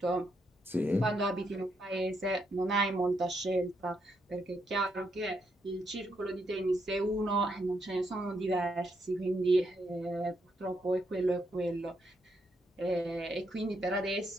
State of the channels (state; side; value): normal; both; correlation 0.78